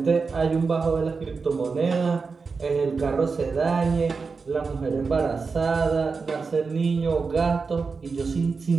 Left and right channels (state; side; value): quieter; left; 4.7 dB